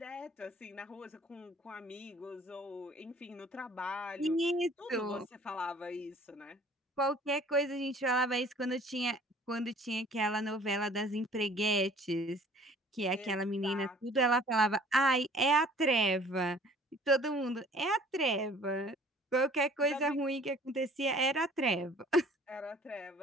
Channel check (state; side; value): normal; both; correlation 0.52